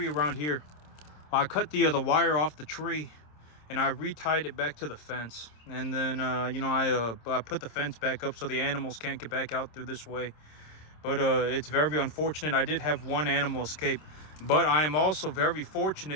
around here. I cut the wire off the tree, and I retied it back to the fence. And then I put the fence back up so the animals can't get back out through this way. But it's very unfortunate. I did have 1 animal escape, but I am also very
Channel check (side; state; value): right; late; 26 ms